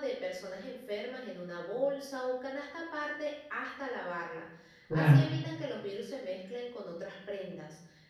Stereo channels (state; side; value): identical; both; correlation 1.00